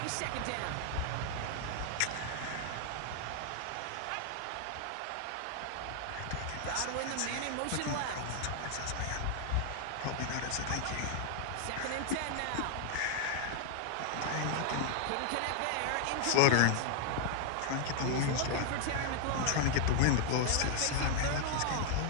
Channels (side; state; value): both; different; correlation 0.00